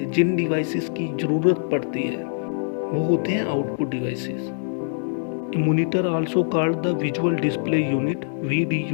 जिन डिवाइसेस की ज़रूरत पड़ती है वो होते हैं output devices. A monitor also called the visual display unit,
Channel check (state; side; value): silent; right; 63 dB below the other